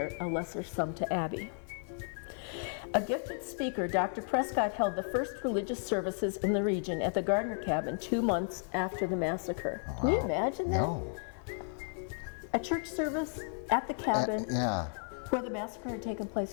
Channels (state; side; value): silent; right; 55 dB below the other